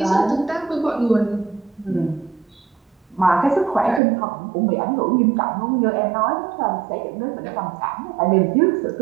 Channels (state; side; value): drops out; left; at 4.0 s